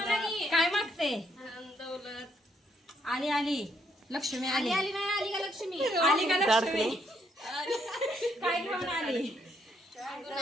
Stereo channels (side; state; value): both; normal; correlation 0.73